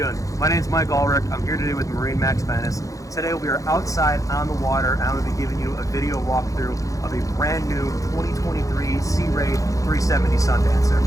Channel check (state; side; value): late; right; 0.16 ms